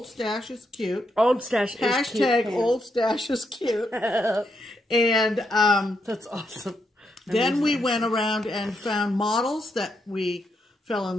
stash is cute. Old stash is cute. Hashtag old stash is cute. And that's awesome. Then we went around and found models that we fell in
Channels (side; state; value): both; normal; correlation 0.80